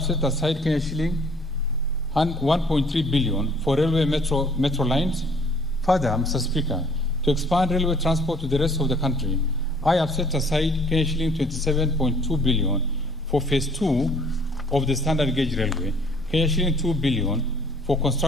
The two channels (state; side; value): normal; both; correlation 0.57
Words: set aside shilling 1.3 billion for railway metro lines. Further, Mr. Speaker, to expand railway transport to the rest of the country, I have set aside shilling 27.2 billion for phase 2 of the standard gauge railway, shilling 2 billion for